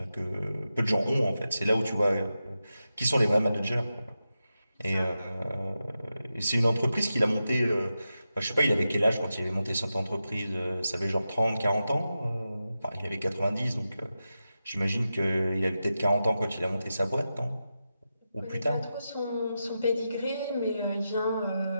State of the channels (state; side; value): inverted; both; correlation -0.90